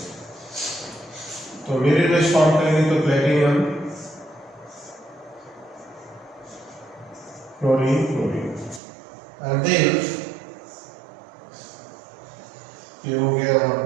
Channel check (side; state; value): left; drops out; at 8.8 s